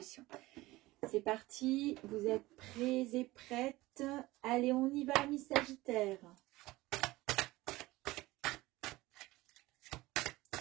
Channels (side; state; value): left; quieter; 19.3 dB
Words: C'est parti, vous êtes prêts et prêtes? Allez, on y va, mes Sagittaires.